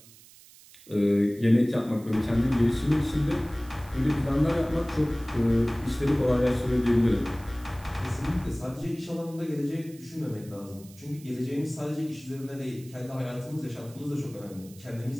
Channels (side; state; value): right; noise; hiss, 22 dB below the sound